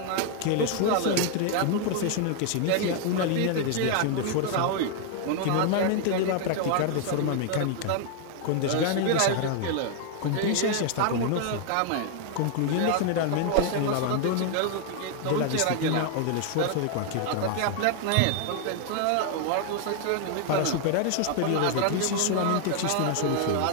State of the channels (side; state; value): both; different; correlation 0.00